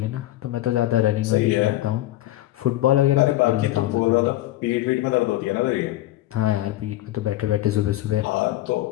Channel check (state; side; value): quieter; right; 15.6 dB